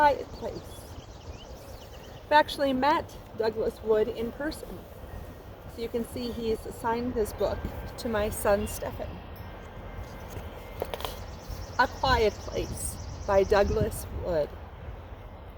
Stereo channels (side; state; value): both; identical; correlation 1.00